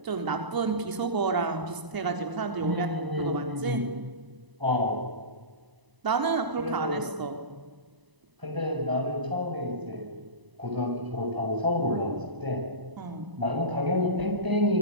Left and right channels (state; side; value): late; left; 1.0 ms